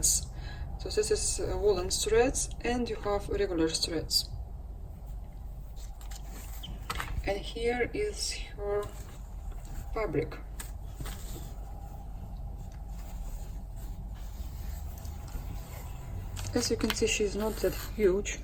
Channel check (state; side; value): identical; both; correlation 1.00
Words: So this is woolen threads, and you have regular threads. And here is her fabric. As you can see, she's not that huge,